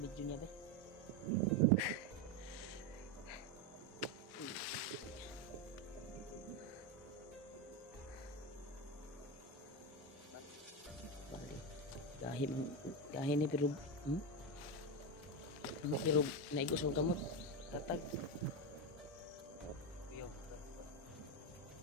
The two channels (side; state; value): both; normal; correlation 0.11